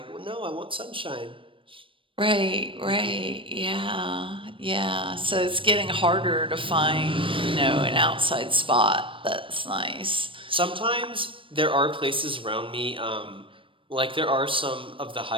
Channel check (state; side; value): late; left; 0.25 ms